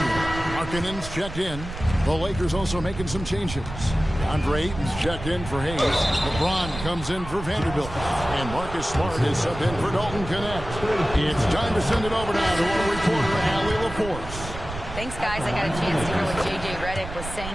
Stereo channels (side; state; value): right; noise; rumble, 10 dB below the sound